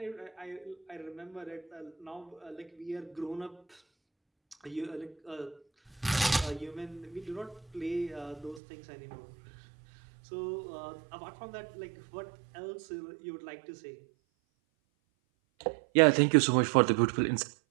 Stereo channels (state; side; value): drops out; left; at 8.6 s